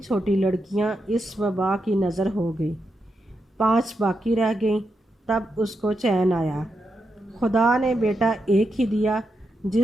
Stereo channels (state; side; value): normal; both; correlation 0.85